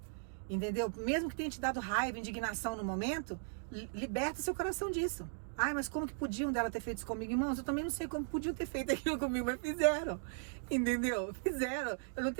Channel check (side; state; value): left; silent; digital silence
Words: entendeu? Mesmo que tenha te dado raiva, indignação no momento, liberta seu coração disso. Ai, mas como que podiam dela ter feito isso comigo? Irmãos, eu também não sei como podiam ter feito aquilo comigo, mas fizeram, entendeu? Fizeram. Eu não